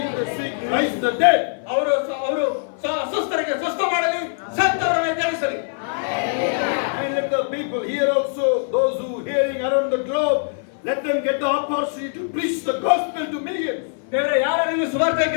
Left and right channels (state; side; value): silent; right; 57 dB below the other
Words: the sick, rise the dead. ಅವರು ಅಸ್ವಸ್ಥರಿಗೆ ಸ್ವಸ್ಥ ಮಾಡಲಿ, ಸತ್ತವರನ್ನು ಎದ್ದೇಳಿಸಲಿ. And let the people here also, those who hearing around the globe, let them get the opportunity to preach the gospel to millions. ದೇವರೇ, ಯಾರು ಸುವಾರ್ತೆ